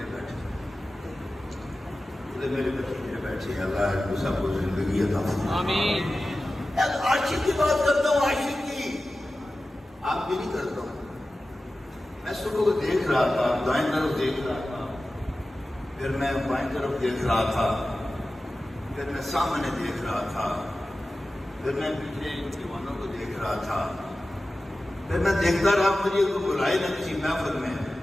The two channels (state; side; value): normal; both; correlation 0.95